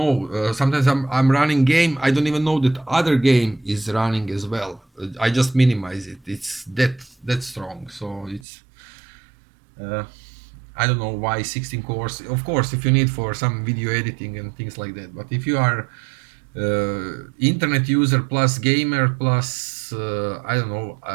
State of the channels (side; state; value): left; drops out; at 8.4 s